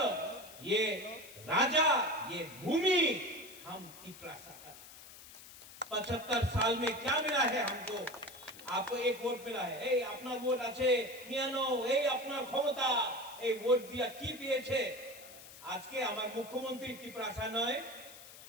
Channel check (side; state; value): left; noise; hiss, 17 dB below the sound